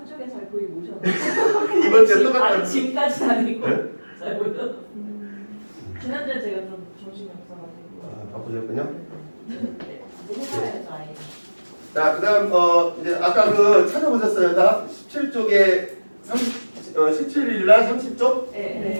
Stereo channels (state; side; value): inverted; both; correlation -1.00